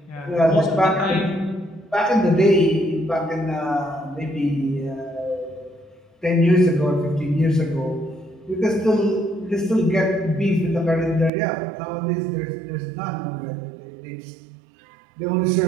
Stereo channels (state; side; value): drops out; left; at 11.3 s